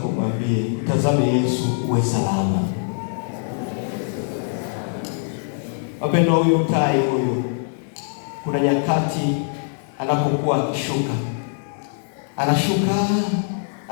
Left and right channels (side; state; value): right; silent; digital silence